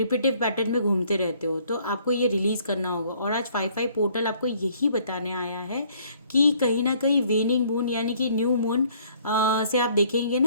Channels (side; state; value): both; inverted; correlation -0.61